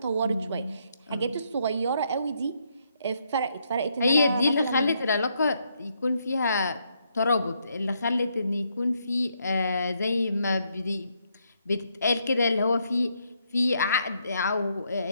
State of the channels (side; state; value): both; inverted; correlation -0.75